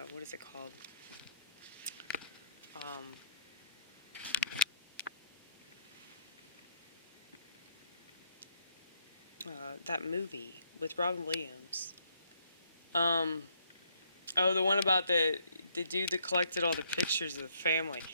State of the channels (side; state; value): both; inverted; correlation -0.70